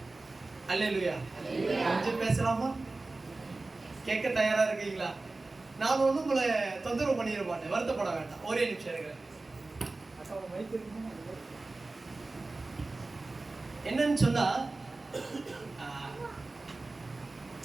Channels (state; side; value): quieter; left; 3.3 dB